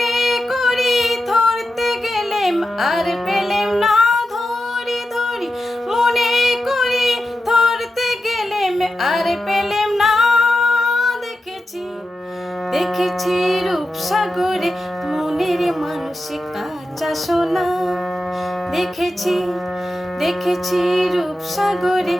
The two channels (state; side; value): normal; both; correlation 0.90